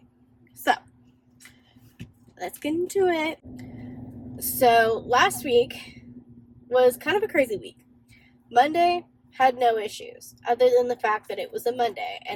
So, let's get into it. So, last week was kind of a crazy week. Monday had no issues, other than the fact that it was a Monday,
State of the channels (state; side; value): identical; both; correlation 1.00